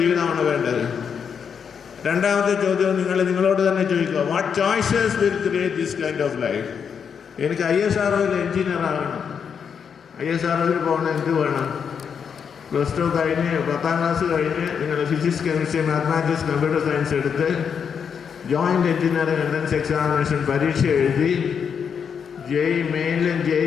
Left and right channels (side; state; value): right; quieter; 7.0 dB